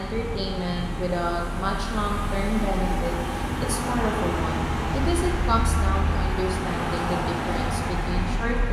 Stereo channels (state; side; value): identical; both; correlation 1.00